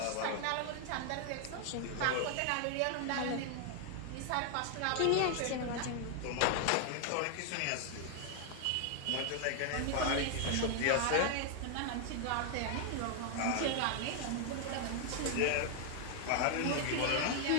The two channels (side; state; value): both; different; correlation 0.00